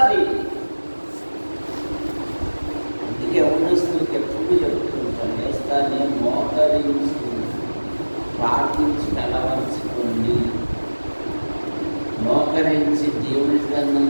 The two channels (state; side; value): inverted; both; correlation -1.00